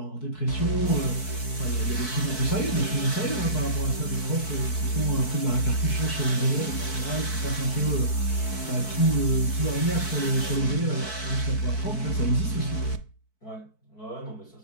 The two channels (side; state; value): right; late; 4.6 ms